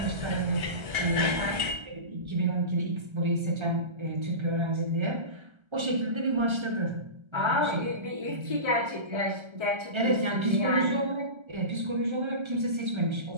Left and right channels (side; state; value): left; late; 1.3 ms